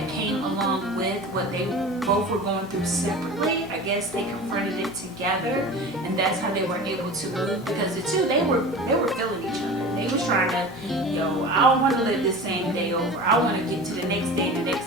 came along with what they both were going through separately. I guess they confronted it together, and that's how they were able to move, because the 2, they were feeling each other. They was trying to, yo, I don't want to live this same day over. I want to get to the next day and the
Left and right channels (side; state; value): both; normal; correlation 0.35